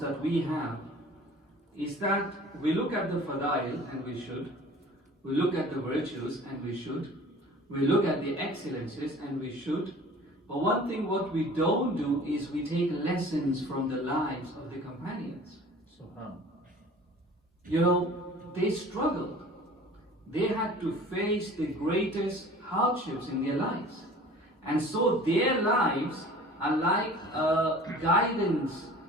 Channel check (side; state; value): both; normal; correlation 0.45